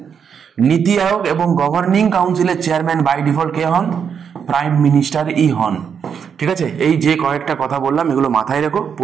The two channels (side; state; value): left; quieter; 7.1 dB